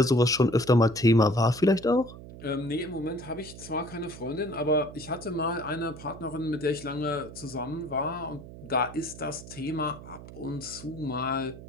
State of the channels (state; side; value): noise; right; hum, 15 dB below the sound